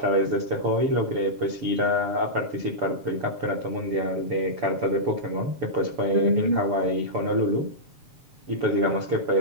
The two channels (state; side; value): late; left; 7.0 ms